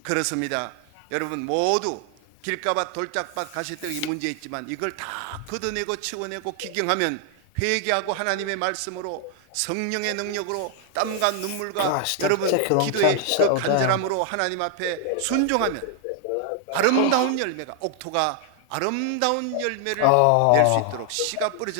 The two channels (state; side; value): different; both; correlation 0.00